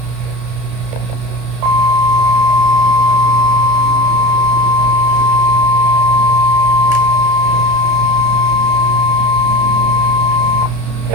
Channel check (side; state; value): left; late; 32 ms